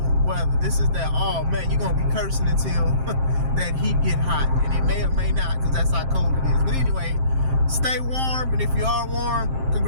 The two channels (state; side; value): late; left; 7.6 ms